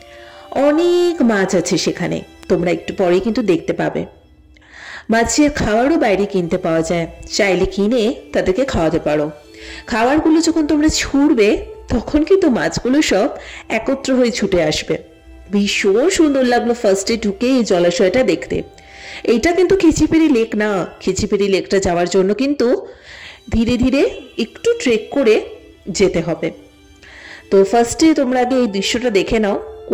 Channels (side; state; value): both; identical; correlation 1.00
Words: অনেক মাছ আছে সেখানে, তোমরা একটু পরে কিন্তু দেখতে পাবে। মাছের খাবারও বাইরে কিনতে পাওয়া যায়, চাইলে কিনে তাদেরকে খাওয়াতে পারো। খাবারগুলো যখন তোমরা ছুঁড়বে তখন কিন্তু মাছগুলো সব একত্র হয়ে ছুটে আসবে। ভীষণ সুন্দর লাগলো ফার্স্টে ঢুকে এই জলাশয়টা দেখতে। এইটা কিন্তু খিচিপেড়ি লেক না, খিচিপেড়ি লেকটা যাওয়ার জন্য কিন্তু ধীরে ধীরে একটু ট্রেক করে যেতে হবে। তো ফার্স্টে তোমরা আগে এই দৃশ্যটা দেখে নাও,